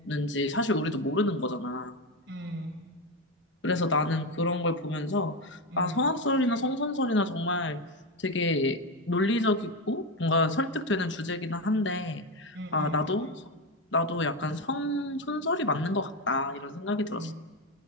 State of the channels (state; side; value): normal; both; correlation 0.13